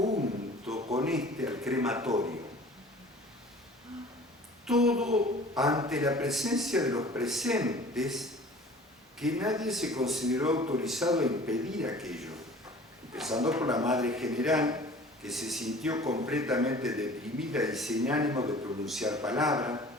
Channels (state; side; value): normal; both; correlation 0.46